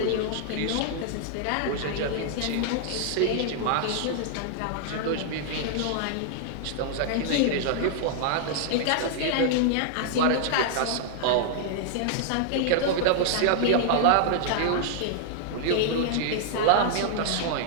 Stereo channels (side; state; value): both; different; correlation -0.01